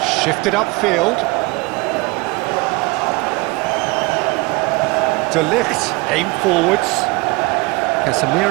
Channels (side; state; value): left; quieter; 25.6 dB